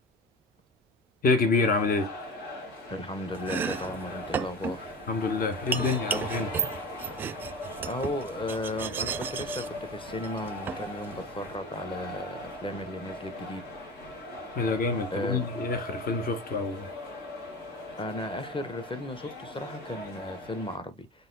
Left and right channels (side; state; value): both; normal; correlation 0.31